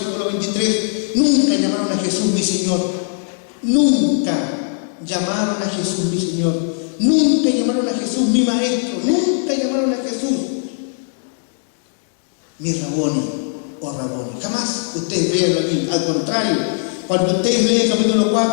23, nunca llamaron a Jesús mi Señor. Nunca llamaron a Jesús mi Señor. Nunca llamaron a Jesús mi Maestro. Nunca llamaron a Jesús mi Raboni o Raboni. Jamás ustedes vean aquí. Al contrario, cuando ustedes leen el capítulo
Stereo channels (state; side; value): silent; right; 66 dB below the other